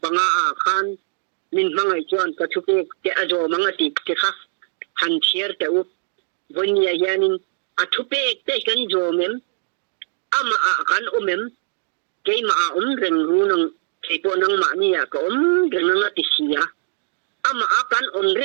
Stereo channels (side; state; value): left; silent; digital silence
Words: panga khan min mangai chuan ka thupe te ajo mangati te kha han chier te u vonia yanin athupe te kan jo mem ama kan umem kay reng runang kaypo nang maaniya ka reng nga tisiya ama akan